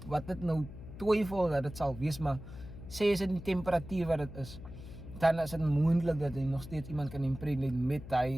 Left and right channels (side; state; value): left; noise; hum, 13 dB below the sound